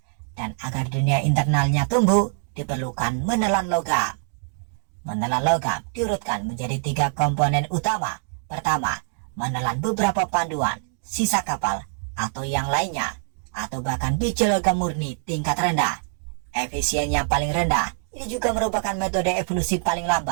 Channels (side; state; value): left; silent; digital silence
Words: dan agar dunia internalnya tumbuh diperlukan menelan logam. Menelan logam diurutkan menjadi 3 komponen utama. Pertama, menelan beberapa panduan, sisa kapal, atau yang lainnya, atau bahkan biji logam murni tingkat rendah. Efisiennya paling rendah, ini juga merupakan metode evolusi paling